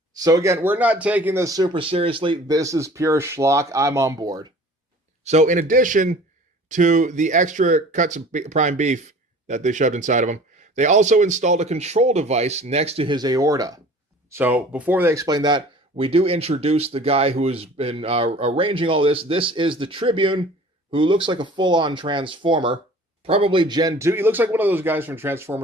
So again, we're not taking this super seriously. This is pure schlock. I'm on board. So in addition to the extra cuts of prime beef that they shoved inside of him, they also installed a control device next to his aorta. So before they explain that, we do introduce the guy who has been arranging all this. This is the Tribune, who looks like a full-on Transformer. Probably Gen 2. He looks like one of those guys from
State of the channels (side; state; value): both; normal; correlation 0.46